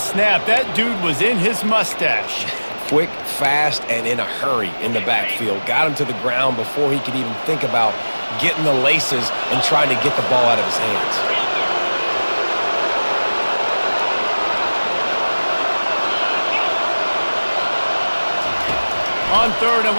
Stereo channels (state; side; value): inverted; both; correlation -1.00